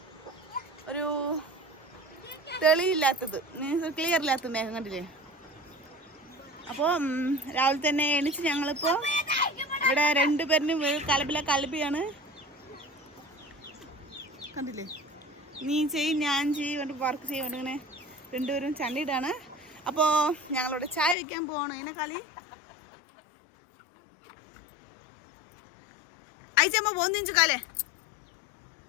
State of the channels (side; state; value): right; drops out; at 21.2 s